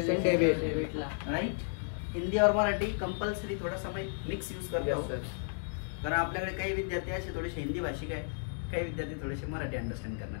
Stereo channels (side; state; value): right; silent; digital silence